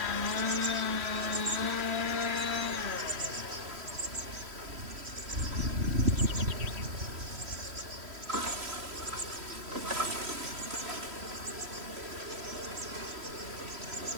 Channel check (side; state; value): left; late; 3.1 ms